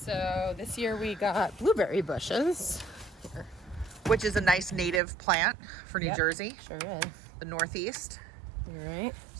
this year we got blueberry bushes. Here. Which is a nice native plant for New Yep, Jersey, Sure is. the Northeast. All right.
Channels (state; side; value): drops out; left; at 5.0 s